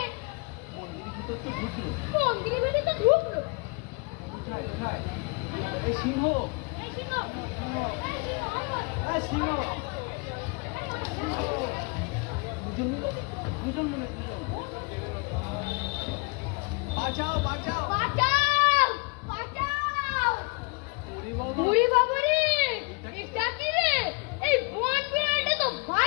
মন্দিরের ভিতর তো ঢুকলো। মন্দিরের ভিতরে তো ঢুকলো। এই সিংহ, এই সিংহ, এই সিংহ, দুজন মিলে বাঁচাও বাঁচাও বাঁচাও বাঁচাও। ওরে বাবা, ওরে বাবা রে, এটা কি রে? এই বন বিড়ালটা তো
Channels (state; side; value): quieter; right; 32.5 dB